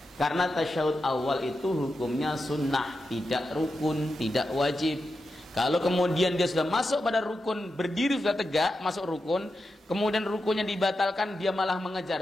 Karena tasyahud awal itu hukumnya sunnah, tidak rukun, tidak wajib. Kalau kemudian dia sudah masuk pada rukun, berdiri sudah tegak, masuk rukun, kemudian rukunnya dibatalkan, dia malah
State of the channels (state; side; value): normal; both; correlation 0.89